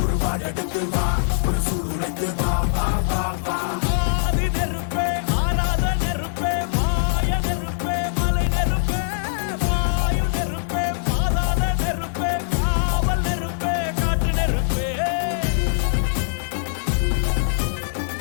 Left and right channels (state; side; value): silent; right; digital silence